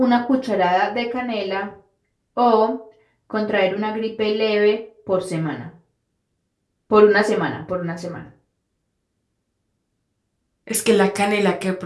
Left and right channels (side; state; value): both; identical; correlation 1.00